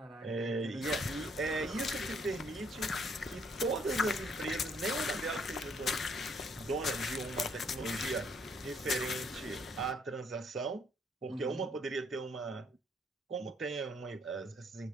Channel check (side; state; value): both; normal; correlation 0.67